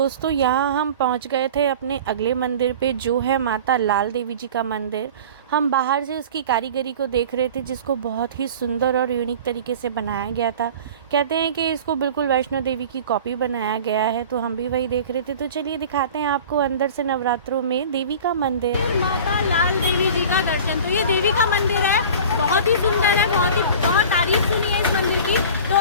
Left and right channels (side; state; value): both; inverted; correlation -0.40